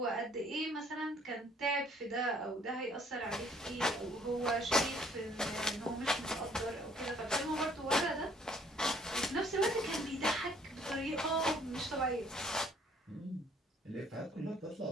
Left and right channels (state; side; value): normal; both; correlation 0.61